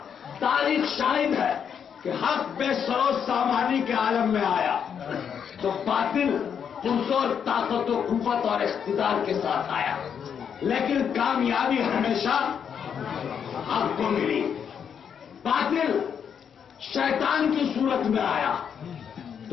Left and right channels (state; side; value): quieter; right; 7.7 dB